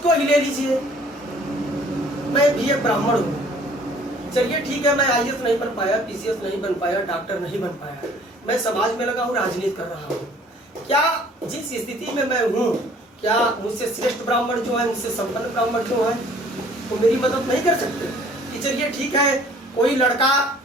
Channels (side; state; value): both; normal; correlation 0.55